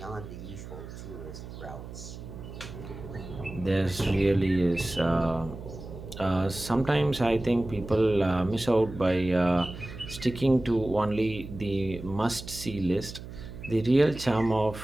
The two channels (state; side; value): noise; right; hum, 12 dB below the sound